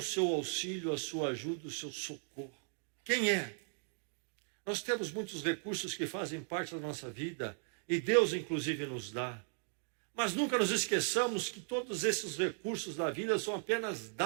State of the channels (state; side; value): silent; left; 53 dB below the other